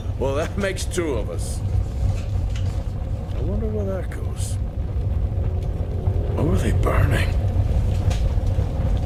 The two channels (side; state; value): both; identical; correlation 1.00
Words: well that makes two of us. I wonder where that goes. What were they burning?